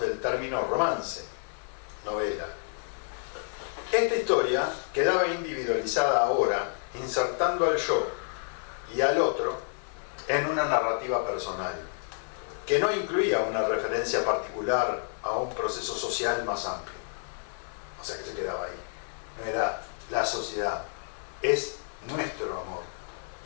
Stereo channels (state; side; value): silent; right; 58 dB below the other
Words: término romance, novela. Esta historia quedaba individualizada ahora, insertando al yo y al otro en una narrativa personal, que no incluía una referencia particular a un proceso social más amplio. O sea que se quedaba ahí. No era la sociedad, es nuestro amor.